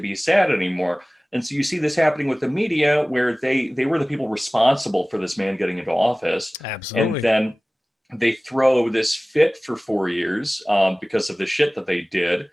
sad anymore. And so you see this happening with the media, where they were the people responsible for this man getting into office. Absolutely. And then they throw this fit for 4 years because of the shit that they did.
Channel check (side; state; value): both; normal; correlation 0.98